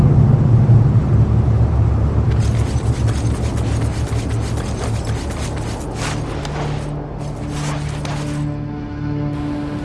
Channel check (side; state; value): both; identical; correlation 1.00